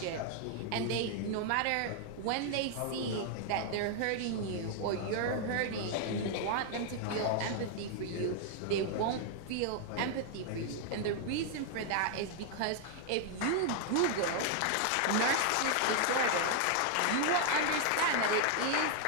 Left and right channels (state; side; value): different; both; correlation 0.00